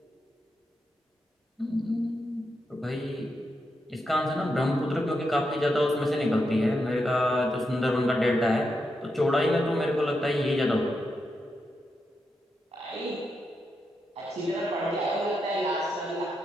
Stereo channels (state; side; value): normal; both; correlation 0.85